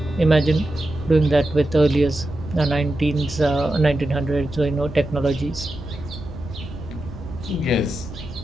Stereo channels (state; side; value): noise; right; rumble, 14 dB below the sound